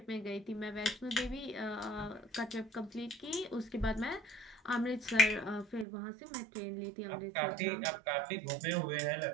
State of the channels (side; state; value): left; drops out; at 5.9 s